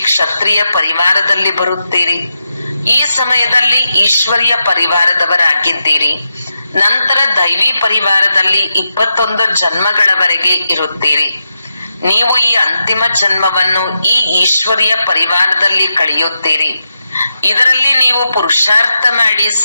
ಕ್ಷತ್ರಿಯ ಪರಿವಾರದಲ್ಲಿ ಬರುತ್ತೀರಿ. ಈ ಸಮಯದಲ್ಲಿ ಈಶ್ವರಿಯ ಪರಿವಾರದವರಾಗಿದ್ದೀರಿ. ನಂತರ ದೈವಿ ಪರಿವಾರದಲ್ಲಿ 21 ಜನ್ಮಗಳವರೆಗೆ ಇರುತ್ತೀರಿ. ನೀವು ಈ ಅಂತಿಮ ಜನ್ಮವನ್ನು ಈ ಈಶ್ವರಿಯ ಪರಿವಾರದಲ್ಲಿ ಕಳೆಯುತ್ತೀರಿ. ಇದರಲ್ಲಿ ನೀವು ಪುರುಷಾರ್ಥ ಮಾಡಿ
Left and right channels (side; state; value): both; inverted; correlation -0.86